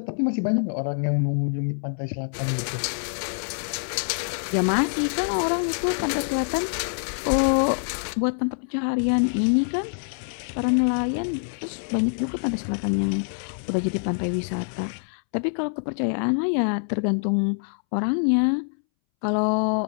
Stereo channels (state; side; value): silent; right; 62 dB below the other